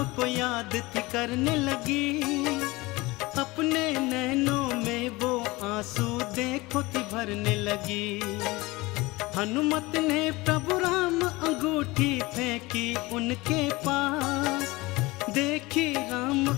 को याद थी करने लगी। अपने नैनों में वो आंसू देखो थी भरने लगी। हनुमत ने प्रभु राम अंगूठी फेंकी उनके पास। देखी राम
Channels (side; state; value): right; quieter; 21.9 dB